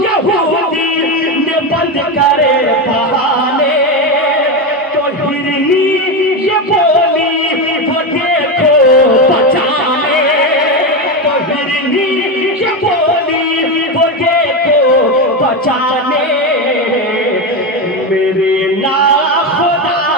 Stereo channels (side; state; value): both; normal; correlation 0.14